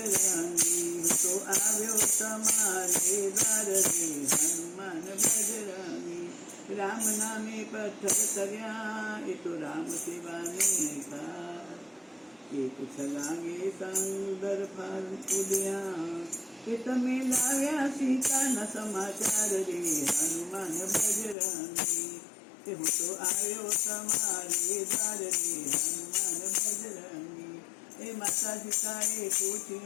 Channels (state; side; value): drops out; right; at 21.4 s